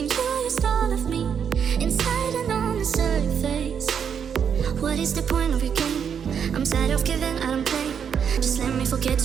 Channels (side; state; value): left; quieter; 7.5 dB